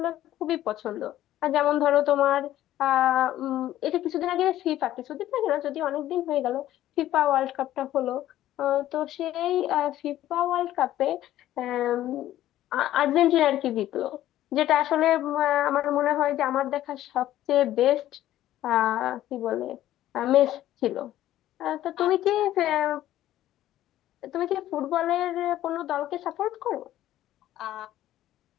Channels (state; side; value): quieter; right; 13.5 dB